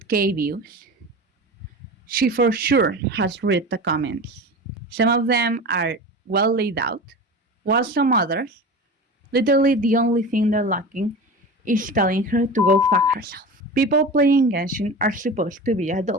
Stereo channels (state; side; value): normal; both; correlation 0.31